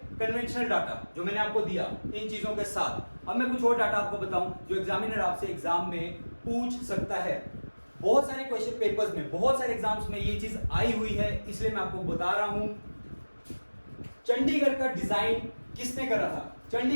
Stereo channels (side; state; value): both; inverted; correlation -1.00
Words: कन्वेंशनल डाटा जो मैंने आपको दिया इन चीजों के साथ। अब मैं कुछ और डाटा आपको बताऊं जो एग्जामिनर आपसे एग्जाम में पूछ सकता है। बहुत सारे क्वेश्चन पेपर्स में, बहुत सारे एग्जाम्स में ये चीज आई हुई है, इसलिए मैं आपको बता रहा हूं। चंडीगढ़ का डिजाइन किसने करा था?